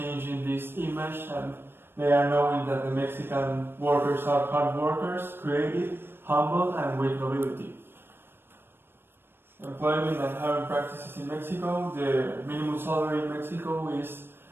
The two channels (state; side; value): late; left; 0.10 ms